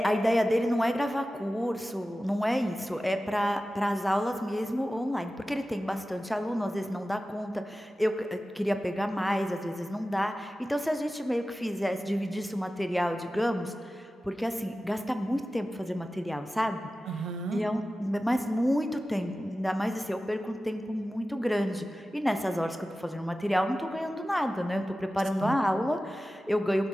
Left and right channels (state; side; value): normal; both; correlation 0.95